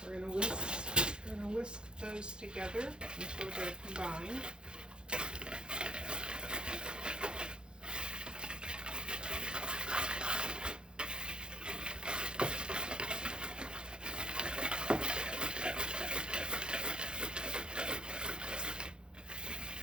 We're going to whisk those together until they're combined.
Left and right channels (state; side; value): late; left; 0.049 ms